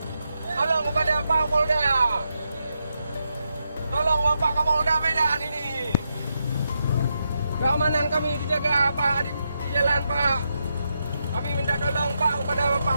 Tolong kepada Pak Kapolda. Tolong Bapak Kapolda Medan ini. Keamanan kami dijaga Pak di jalan Pak. Kami minta tolong Pak kepada Bapak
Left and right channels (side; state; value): both; inverted; correlation -0.84